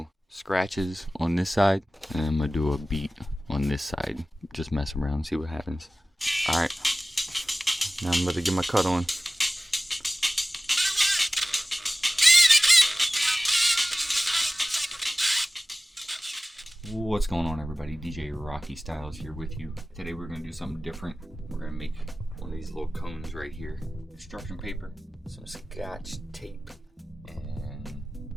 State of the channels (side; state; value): both; normal; correlation 0.97